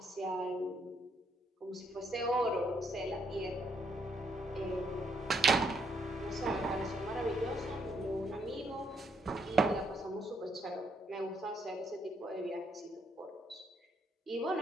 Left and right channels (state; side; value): normal; both; correlation 0.73